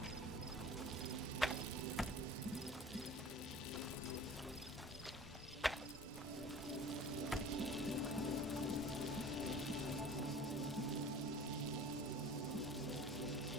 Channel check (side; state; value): both; normal; correlation 0.43